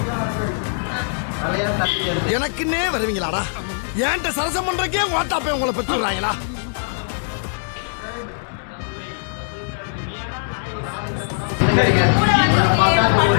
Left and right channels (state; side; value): silent; right; digital silence